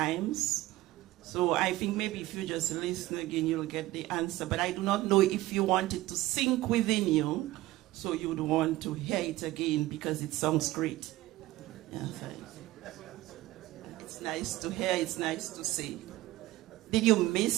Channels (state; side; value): quieter; left; 17.3 dB